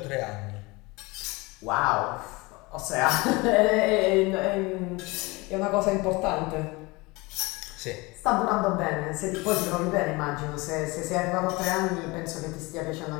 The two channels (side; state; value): right; quieter; 24.2 dB